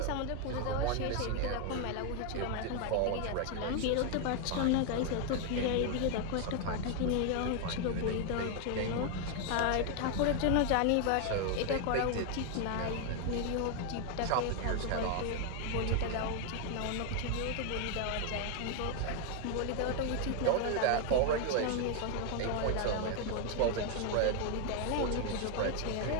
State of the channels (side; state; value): both; different; correlation 0.01